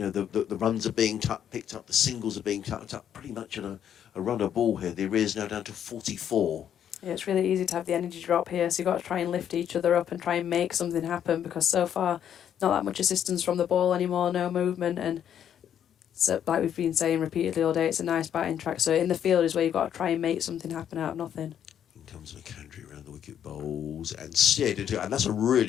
runs are being picked up. The singles are being tucked up. Pretty much at a runner ball here. The arrears now down to 44. Yeah, it's really easy to have the energy drop here, so you've got to try and lift each other up and try and make something happen, because so far, not that much assistance from the ball anymore, no movement, and so, like we've been saying repeatedly all day, it's a nice batting track, so in the field is where you've got to try and make something happen out of nothing. In comes McAndrew around the wicket, bowls and steered into it, and that's a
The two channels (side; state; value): right; quieter; 9.4 dB